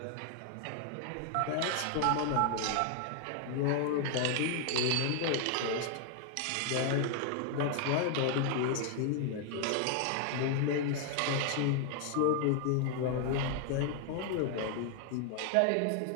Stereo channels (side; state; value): both; different; correlation 0.00